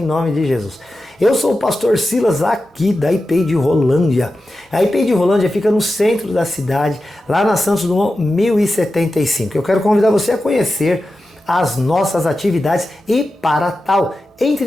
nome de Jesus. Eu sou o pastor Silas aqui da IPI de Rolândia. A IPI de Rolândia fica no centro da cidade, lá na Santos Dumont 1075. Eu quero convidar você a conhecer as nossas atividades e para tal,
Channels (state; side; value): normal; both; correlation 0.92